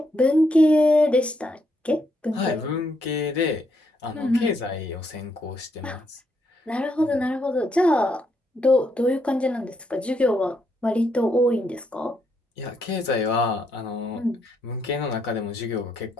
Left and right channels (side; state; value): both; normal; correlation 0.76